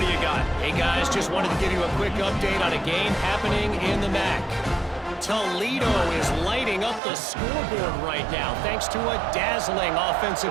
do you got? Hey, guys, just wanted to give you a quick update on a game happening in the MAC. Toledo is lighting up the scoreboard right now thanks to a dazzling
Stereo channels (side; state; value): left; drops out; at 7.0 s